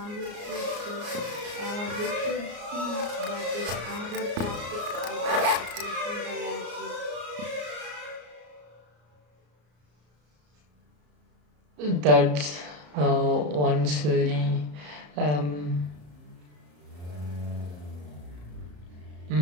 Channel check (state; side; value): late; left; 34 ms